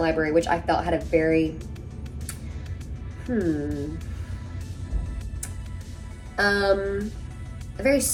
which I felt had a very a very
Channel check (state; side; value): identical; both; correlation 1.00